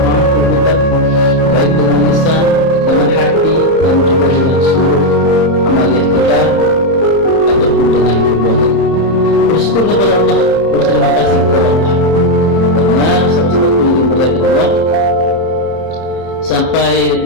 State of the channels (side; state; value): right; late; 30 ms